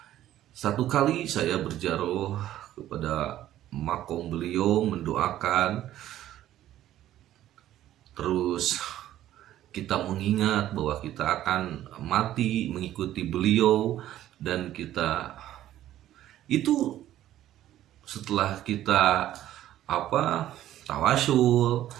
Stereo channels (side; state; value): left; quieter; 13.0 dB